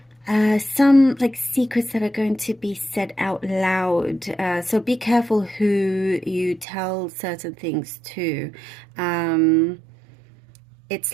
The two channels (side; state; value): left; drops out; at 6.7 s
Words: some like secrets that are going to be said out loud. So be careful who you tell certain things to.